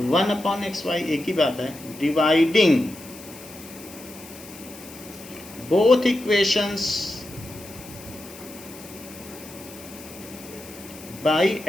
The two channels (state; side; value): noise; left; hiss, 17 dB below the sound